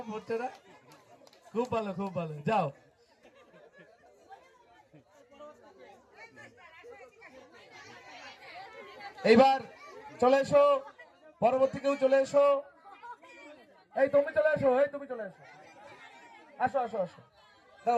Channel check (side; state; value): both; identical; correlation 1.00